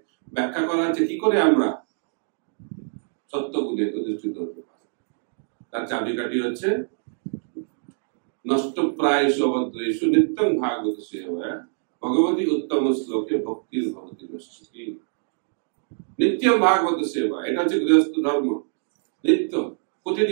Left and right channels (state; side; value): silent; left; digital silence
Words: ব্যাখ্যা করা হচ্ছে কি করে আমরা সত্যগুণে অধিষ্ঠিত হতে পারি। তার চাবিকাঠি হচ্ছে নষ্ট প্রায়শু অভদ্রেষু নিত্যং ভাগবত সেবা ভগবতী উত্তম শ্লোকে ভক্তির ভবতি নষ্টি। নিত্যম ভাগবত সেবা, এটা হচ্ছে গৃহস্থ ধর্ম। নিত্য,